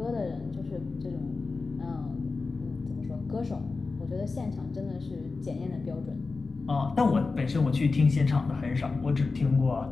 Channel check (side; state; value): right; quieter; 4.0 dB